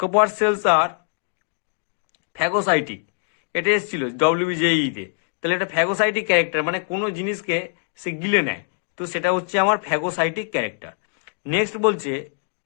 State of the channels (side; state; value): right; silent; 63 dB below the other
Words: কপার সেলস আর ফ্যাগোসাইটিক, এটা এসেছিল ডব্লিউবিজেইতে। তাহলে এটা ফ্যাগোসাইটিক ক্যারেক্টার, মানে কোনো জিনিসকে সে গিলে নেয়, তো সেটা হচ্ছে আমার ফ্যাগোসাইটিক ক্যারেক্টার। নেক্সট বলছে